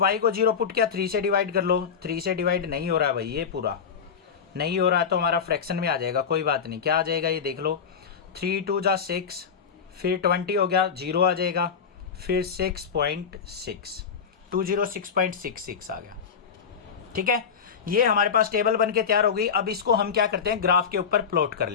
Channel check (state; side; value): quieter; right; 6.7 dB